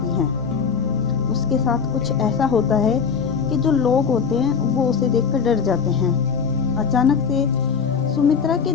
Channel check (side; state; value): right; quieter; 6.2 dB